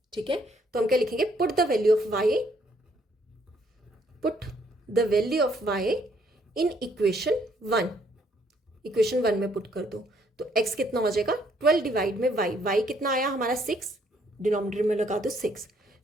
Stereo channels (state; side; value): normal; both; correlation 0.68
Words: ठीक है, तो हम क्या लिखेंगे, put the value of y in equation 1। Equation 1 में पुट कर दो तो x कितना हो जाएगा, 12 डिवाइड में y कितना आया हमारा 6, डिनोमिनेटर में लगा दो 6,